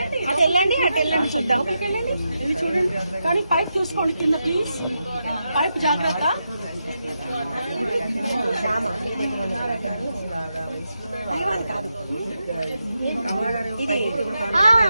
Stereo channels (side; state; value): both; inverted; correlation -0.86